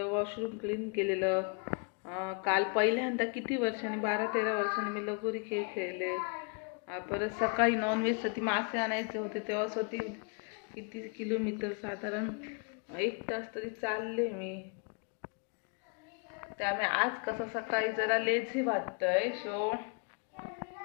वॉशरूम क्लीन केलेलं. काल पहिल्यांदा किती वर्षांनी 12-13 वर्षांनी मी लगोरी खेळ खेळले. परत सकाळी नॉनव्हेजसाठी मासे आणायचे होते तेव्हा स्वतः किती किलोमीटर साधारण 1 तास तरी चालले मी. त्यामुळे आज कसं सकाळी जरा लेझी वाटतंय. सो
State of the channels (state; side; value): quieter; right; 37.6 dB